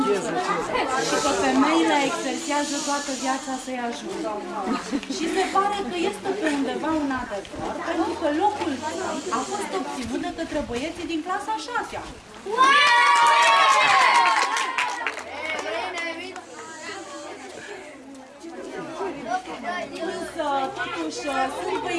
bucătari și că femeile exersează toată viața să-i ajute. Și se pare că este pe undeva un adevăr, pentru că locul 3 a fost obținut de către băieții din clasa 6-a. Însă, totuși, sunt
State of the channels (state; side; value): identical; both; correlation 1.00